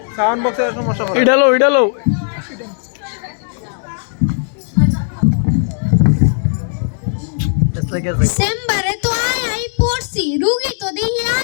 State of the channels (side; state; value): right; silent; 69 dB below the other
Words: সাউন্ড বক্সের সমস্যা করে ইডালো চেম্বারে তো আই পড়ছি, রুগী তো দেখি